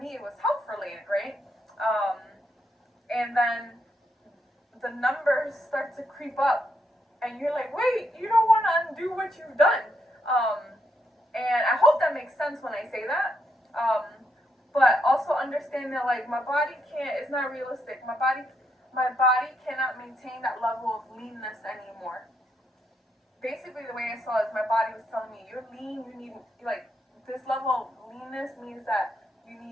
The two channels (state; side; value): normal; both; correlation 0.78